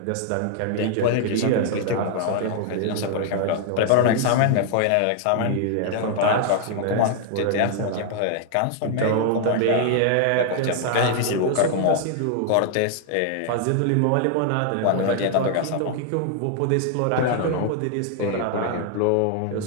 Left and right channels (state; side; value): different; both; correlation 0.00